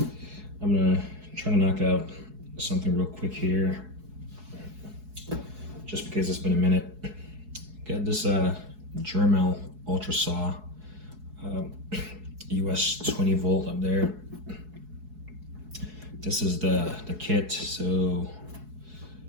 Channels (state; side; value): late; left; 4.7 ms